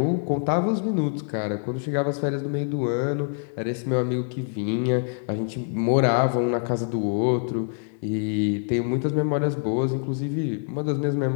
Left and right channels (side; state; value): right; silent; digital silence